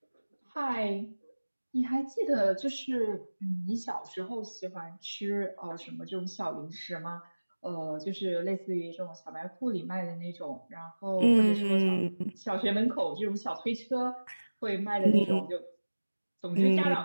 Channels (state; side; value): inverted; both; correlation -1.00